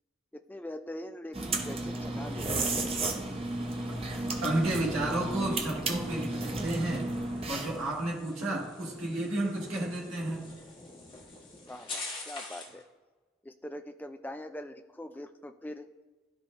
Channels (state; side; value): normal; both; correlation 0.71